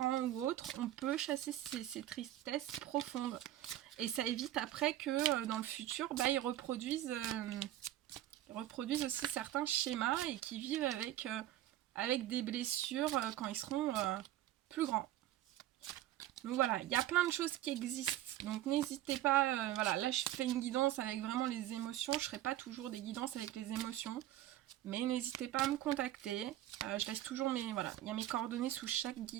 ou autres, on peut chasser ces tristesses profondes. Et ça évite après que dans le futur, bah, ils reproduisent aussi certains schémas et qu'ils vivent avec des blessures quand ils seront plus grands. Donc voilà, il y a plein de choses qui existent. Donc n'hésitez pas, voilà, là je fais une guidance avec vraiment les émotions. Je ne ferai pas toujours des guidances avec les émotions. Mais n'hésitez pas à me contacter. Je laisse toujours voilà, il y a mes coordonnées sous chaque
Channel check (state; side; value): quieter; left; 13.6 dB